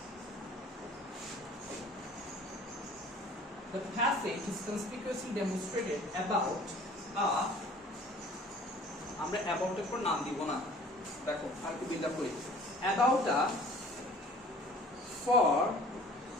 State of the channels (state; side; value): normal; both; correlation 0.49